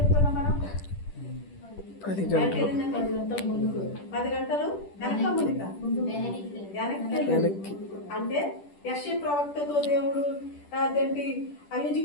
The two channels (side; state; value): right; late; 10 ms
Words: మనం. 10 గంటలు ముందుకు 10 గంటలు వెనక్కి. అంటే యెషయా ప్రవక్తతో దేవుడు అదేంటి